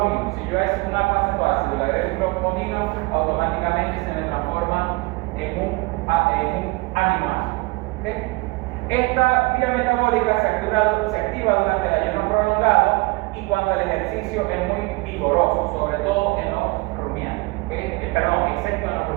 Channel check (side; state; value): left; quieter; 25.0 dB